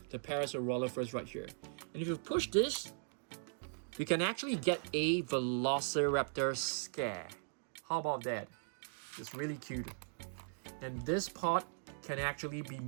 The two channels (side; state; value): left; silent; digital silence